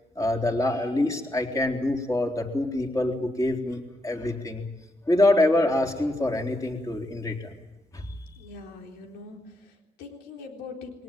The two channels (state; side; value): normal; both; correlation 0.81